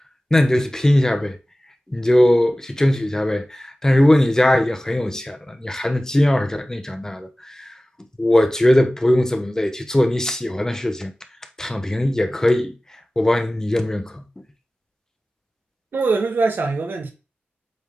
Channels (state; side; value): normal; both; correlation 0.97